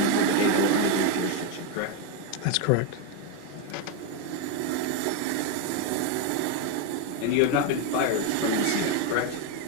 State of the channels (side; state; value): both; different; correlation 0.02